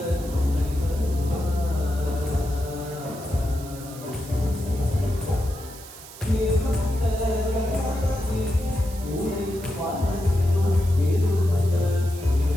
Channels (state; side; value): noise; right; hiss, 17 dB below the sound